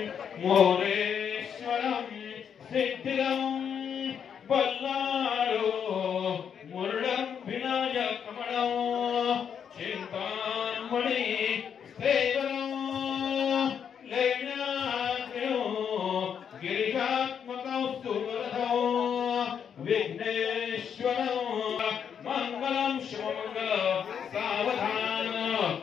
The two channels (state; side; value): quieter; right; 7.8 dB